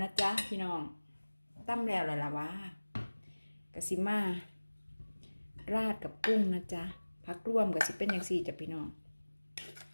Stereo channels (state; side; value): inverted; both; correlation -1.00